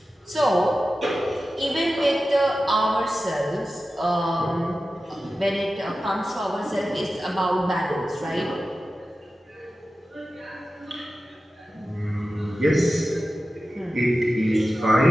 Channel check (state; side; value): normal; both; correlation 0.94